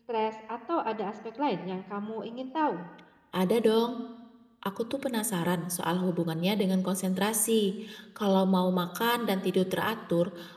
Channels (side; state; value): both; identical; correlation 1.00